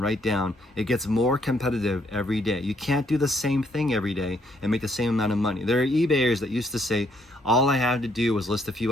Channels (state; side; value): normal; both; correlation 0.70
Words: write down. It gets more competitive every day. You can't do the same thing every day and make the same amount of money. There are eBayers that used to say, all I had to do was list a few